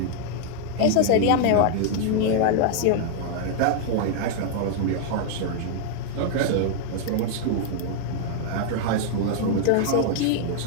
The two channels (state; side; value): different; both; correlation -0.01